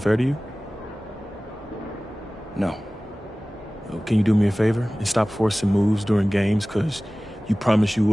to you? No. Can you do me a favor and stop forcing moves during games because you promised you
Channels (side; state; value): both; normal; correlation 0.98